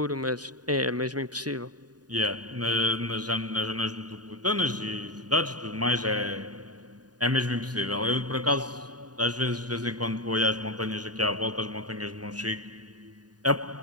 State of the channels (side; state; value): left; late; 0.68 ms